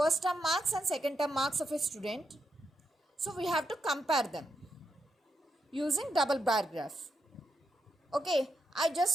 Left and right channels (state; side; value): normal; both; correlation 0.83